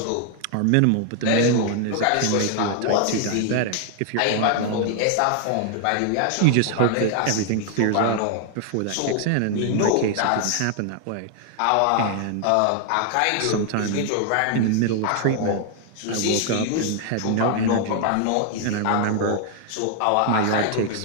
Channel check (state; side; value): different; both; correlation 0.00